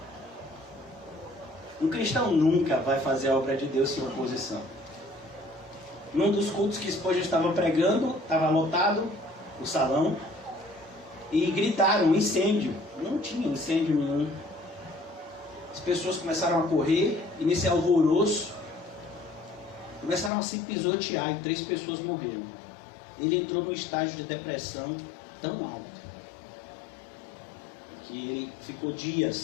Um cristão nunca vai fazer a obra de Deus sem oposição. Num dos cultos que Spurgeon estava pregando, estava lotado o salão, e gritaram incêndio. Não tinha incêndio nenhum. As pessoas começaram a correr, e nesse alvoroço começaram a se pisotear, e 3 pessoas morreram. Ele entrou num estágio de depressão tão alto que ele ficou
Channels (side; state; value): right; drops out; at 20.3 s